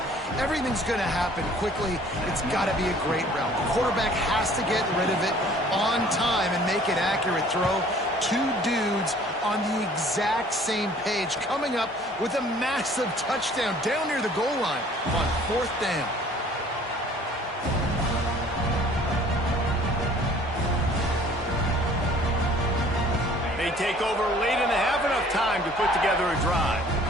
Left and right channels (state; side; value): normal; both; correlation 0.53